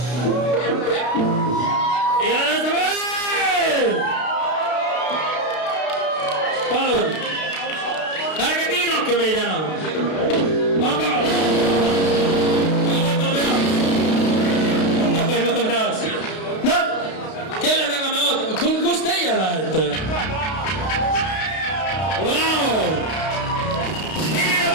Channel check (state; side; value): late; right; 32 ms